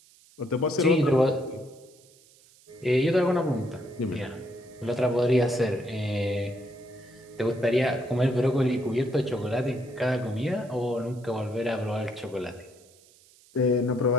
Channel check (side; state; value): right; noise; hiss, 28 dB below the sound